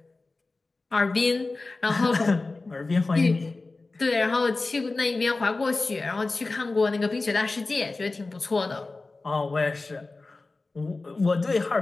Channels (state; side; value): quieter; right; 3.5 dB